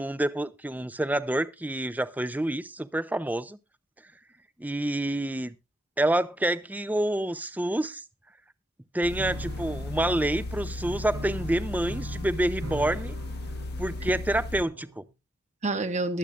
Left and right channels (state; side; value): normal; both; correlation 0.81